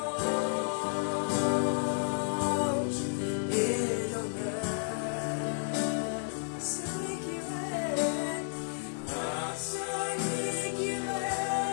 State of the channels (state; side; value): silent; right; 56 dB below the other